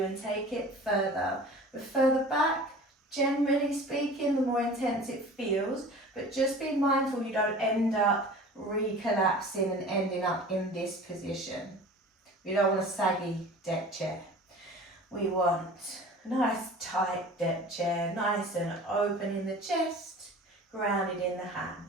and take it further. The further back, generally speaking, the more intense it feels, but just be mindful you don't end up recollapsing and ending up in this position. We don't want a saggy deck chair. We want a nice tight deck chair, nice and open in the chest, grounded in the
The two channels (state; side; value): normal; both; correlation 0.41